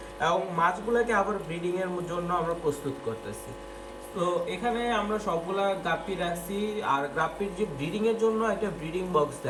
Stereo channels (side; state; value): both; identical; correlation 1.00